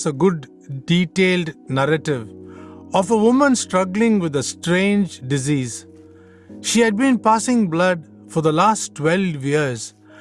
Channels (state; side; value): identical; both; correlation 1.00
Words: a good detailed narrative of a woman struggling with a strange disease. She had been passing blood for the last 12 years